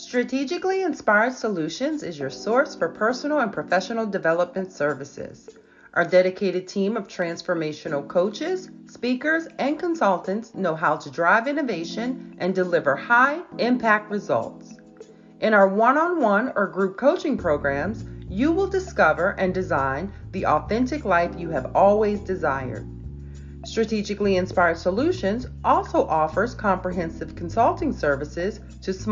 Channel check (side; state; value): both; identical; correlation 1.00